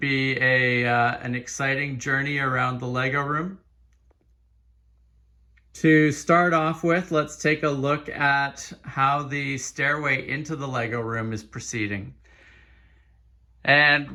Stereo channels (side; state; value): both; identical; correlation 1.00